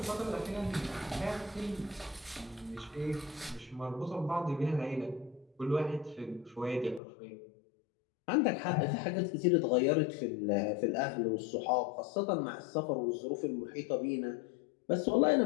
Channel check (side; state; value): right; drops out; at 7.0 s